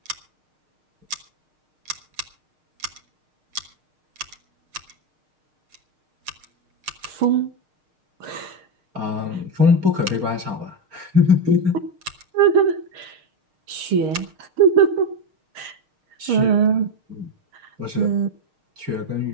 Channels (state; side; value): late; left; 6.5 ms